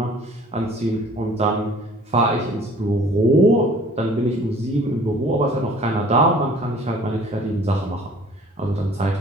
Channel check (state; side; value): normal; both; correlation 0.51